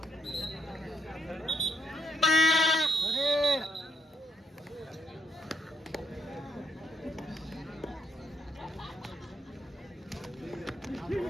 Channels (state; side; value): normal; both; correlation 0.75